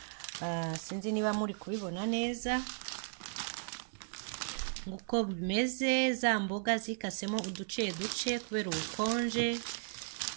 Sinzi niba muri kubibona neza nguko bimeze. Za mboga zikasemo uduce duce kubera ubukonje,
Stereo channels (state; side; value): silent; left; digital silence